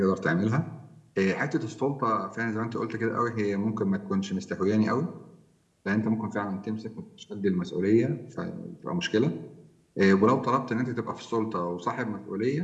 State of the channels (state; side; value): identical; both; correlation 1.00